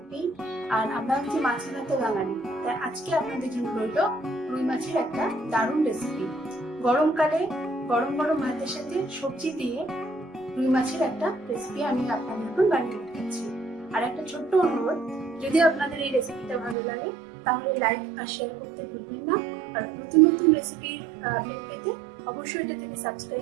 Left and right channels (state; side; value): drops out; left; at 16.8 s